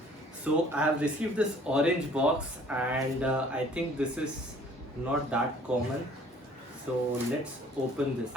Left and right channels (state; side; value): normal; both; correlation 0.55